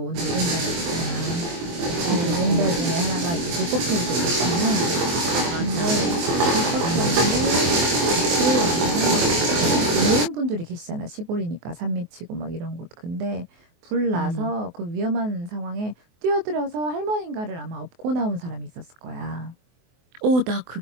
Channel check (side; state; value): left; late; 24 ms